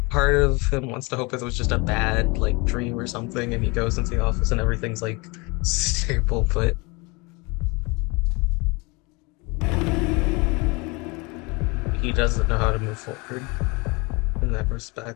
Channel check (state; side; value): quieter; right; 27.4 dB